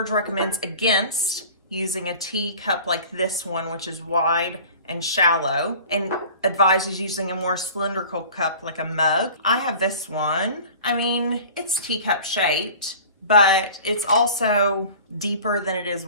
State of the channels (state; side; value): inverted; both; correlation -0.42